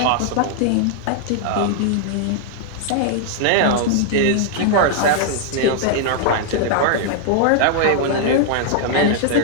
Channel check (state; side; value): different; both; correlation -0.01